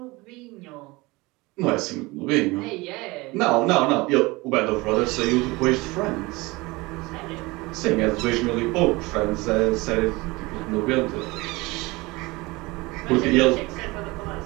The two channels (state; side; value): quieter; left; 22.9 dB